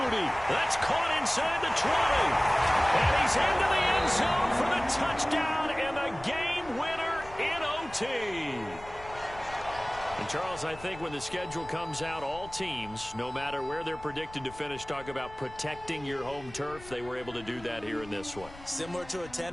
That's caught inside the 20. And he's into the end zone for the touchdown and the game winner in OT. And, Charles, I think when the schedule comes out, all teams, no matter where they're predicted to finish, talk about protecting your home turf. They were able to do that here in this one. Similar to a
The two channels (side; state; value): left; noise; rumble, 18 dB below the sound